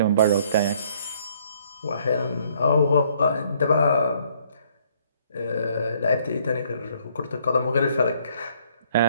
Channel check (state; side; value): inverted; both; correlation -0.64